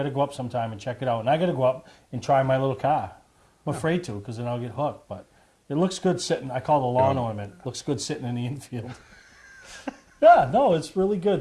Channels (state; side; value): identical; both; correlation 1.00